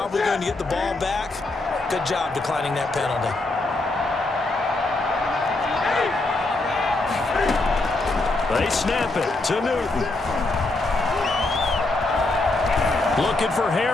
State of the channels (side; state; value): right; quieter; 3.0 dB